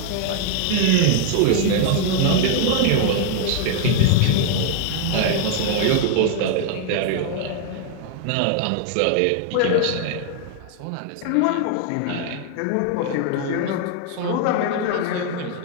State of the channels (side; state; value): both; different; correlation 0.00